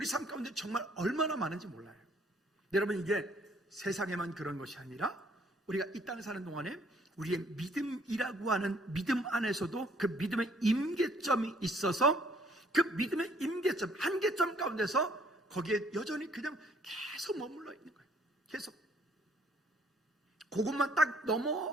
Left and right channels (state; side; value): normal; both; correlation 0.62